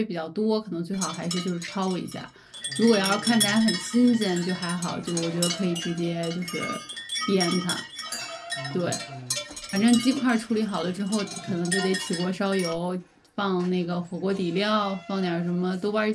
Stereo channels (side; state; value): both; identical; correlation 1.00